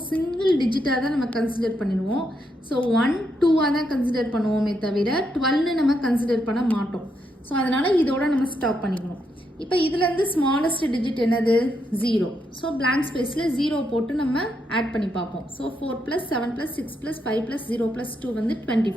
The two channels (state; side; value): normal; both; correlation 0.80